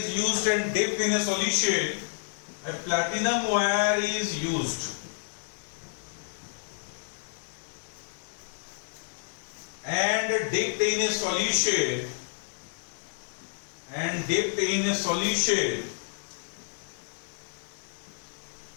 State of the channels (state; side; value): silent; right; 58 dB below the other